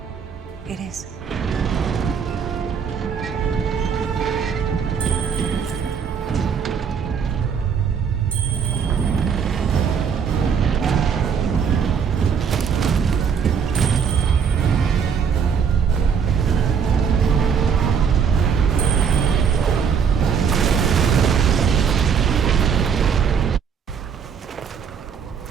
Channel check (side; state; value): left; quieter; 6.8 dB